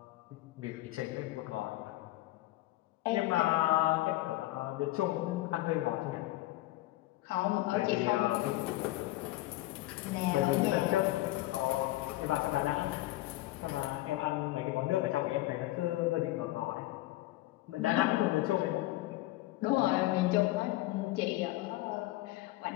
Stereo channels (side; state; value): right; quieter; 17.7 dB